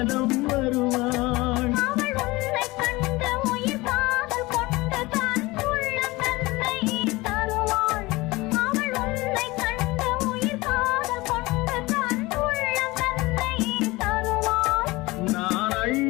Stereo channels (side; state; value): right; quieter; 21.5 dB